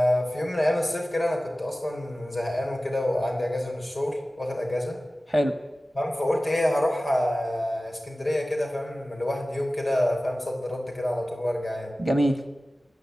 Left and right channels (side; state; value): both; normal; correlation 0.97